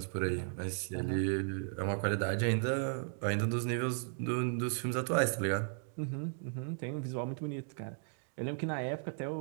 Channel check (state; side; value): silent; left; digital silence